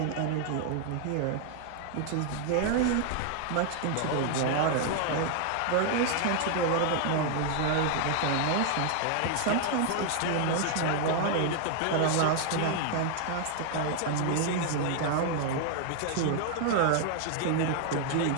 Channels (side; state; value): both; different; correlation 0.00